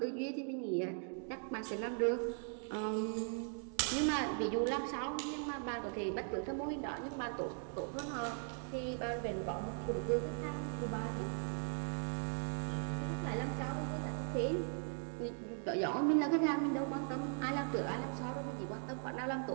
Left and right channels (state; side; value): silent; left; 52 dB below the other